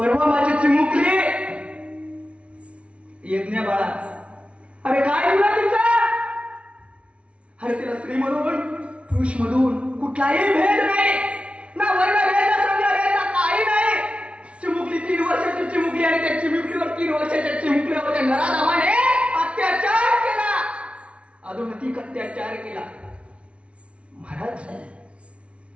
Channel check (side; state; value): left; late; 0.061 ms